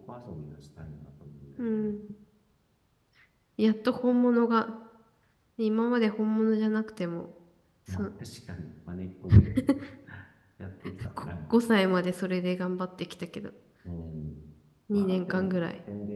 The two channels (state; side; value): identical; both; correlation 1.00